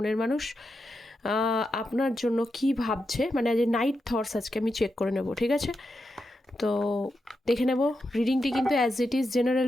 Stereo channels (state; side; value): normal; both; correlation 0.87